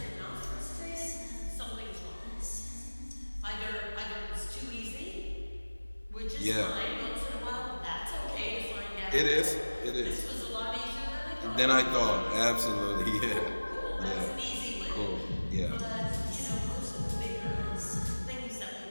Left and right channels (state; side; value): inverted; both; correlation -1.00